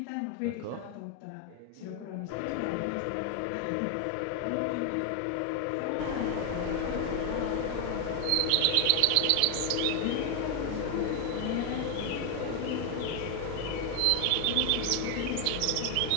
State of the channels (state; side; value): different; both; correlation 0.00